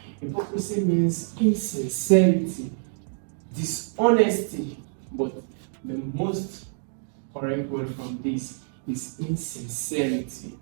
Hypocrisy means insincerity, dishonesty. But the most correct word from this is insincerity.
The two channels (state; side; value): silent; left; digital silence